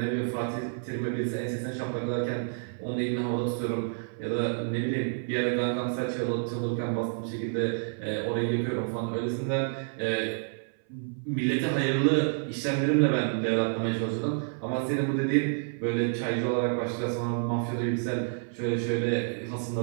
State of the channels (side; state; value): left; silent; 57 dB below the other